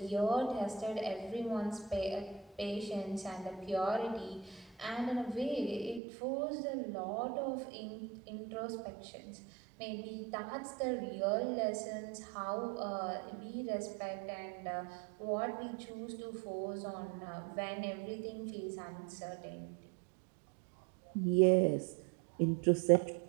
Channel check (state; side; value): drops out; left; at 6.0 s